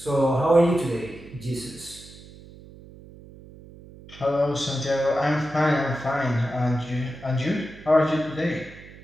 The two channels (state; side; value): noise; right; hum, 19 dB below the sound